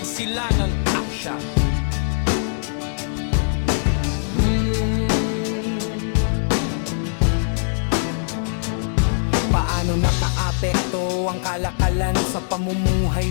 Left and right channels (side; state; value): right; silent; digital silence